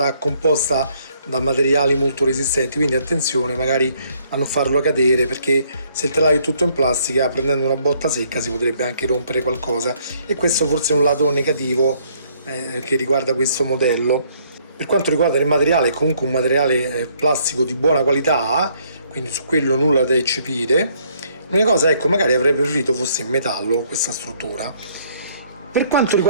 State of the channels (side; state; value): both; inverted; correlation -0.66